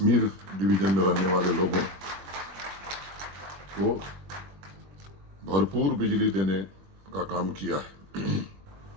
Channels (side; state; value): left; late; 21 ms